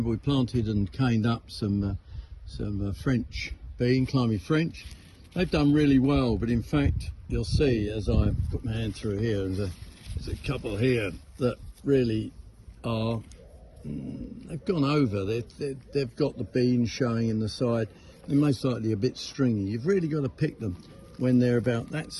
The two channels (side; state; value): both; identical; correlation 1.00